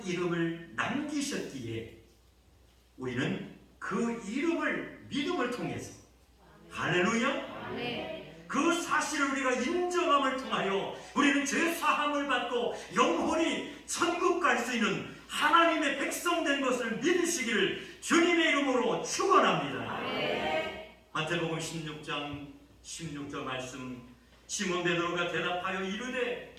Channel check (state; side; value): identical; both; correlation 1.00